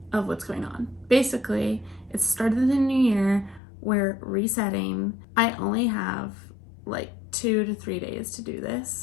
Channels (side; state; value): right; drops out; at 3.6 s